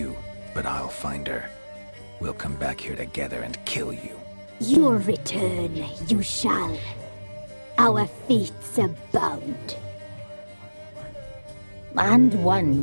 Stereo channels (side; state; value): both; inverted; correlation -1.00